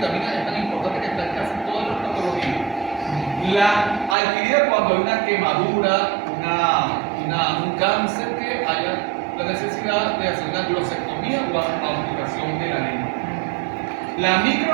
es tan importante que está en casi todas las patologías. La adquirida cuando hay una quemadura, un cáncer, que haya la necesidad de hacer una glosectomía o amputación de la lengua. La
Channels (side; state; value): left; drops out; at 4.2 s